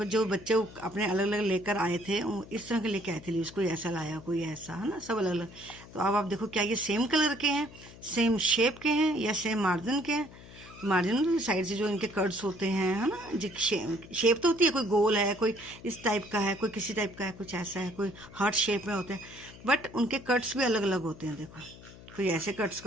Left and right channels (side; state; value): left; noise; hum, 18 dB below the sound